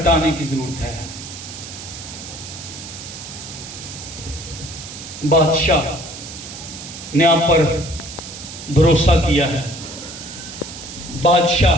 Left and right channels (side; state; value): right; noise; hiss, 12 dB below the sound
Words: کی ضرورت ہے۔ بادشاہ نے آپ پر بھروسہ کیا ہے،